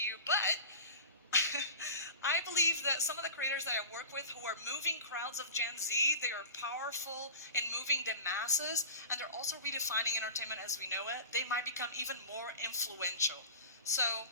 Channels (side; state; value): both; inverted; correlation -0.34